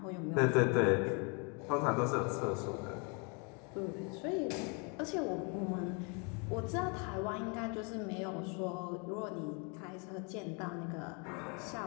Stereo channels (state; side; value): quieter; right; 35.0 dB